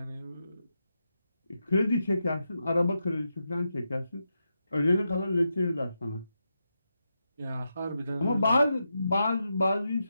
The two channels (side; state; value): both; inverted; correlation -0.87